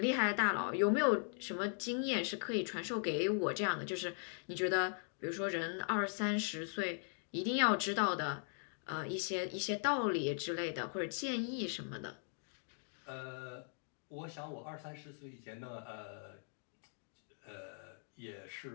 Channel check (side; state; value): right; silent; 51 dB below the other